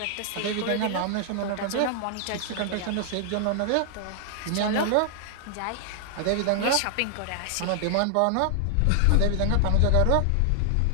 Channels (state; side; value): different; both; correlation 0.00